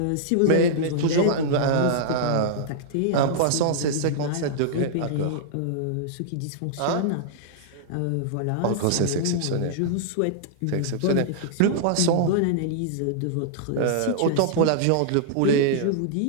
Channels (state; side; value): different; both; correlation -0.01